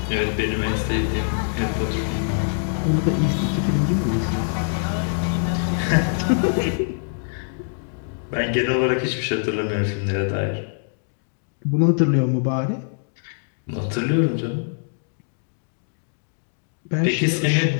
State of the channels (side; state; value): right; silent; digital silence